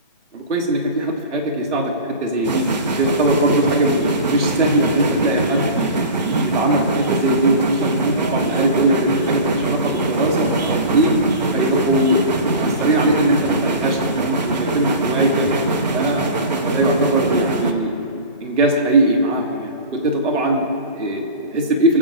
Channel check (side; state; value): both; inverted; correlation -0.33